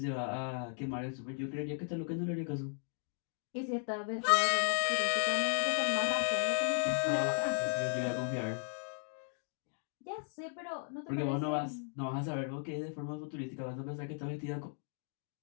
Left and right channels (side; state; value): right; silent; 54 dB below the other